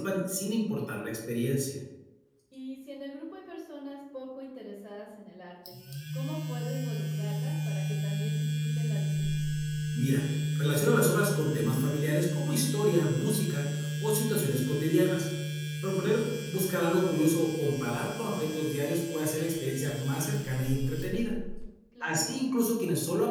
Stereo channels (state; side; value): identical; both; correlation 1.00